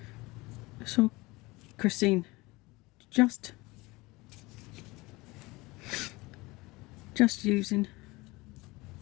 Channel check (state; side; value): quieter; right; 22.6 dB